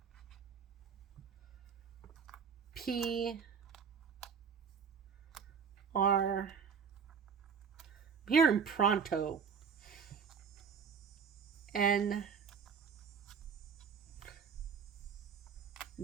P, R. I'm hearing pronto. N,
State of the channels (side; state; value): left; quieter; 6.4 dB